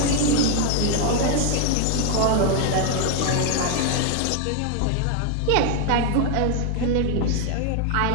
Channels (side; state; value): both; different; correlation 0.00